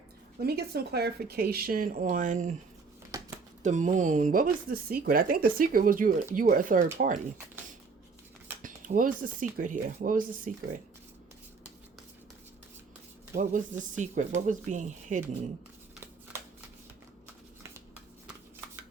Let me get some clarification on the Moon. What was the secret? I think the secret was you were a third party. What was the secret here? What was the secret? What was the secret? What was being hidden?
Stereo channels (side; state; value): left; quieter; 4.7 dB